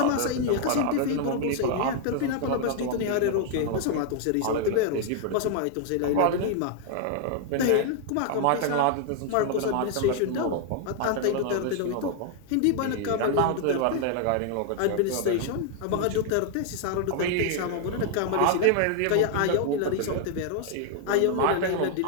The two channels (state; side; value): different; both; correlation 0.00